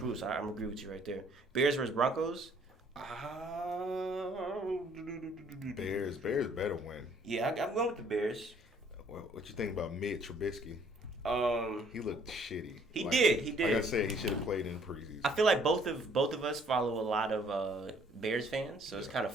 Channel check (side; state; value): both; normal; correlation 0.61